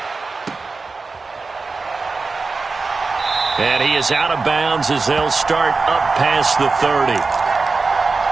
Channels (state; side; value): quieter; left; 4.1 dB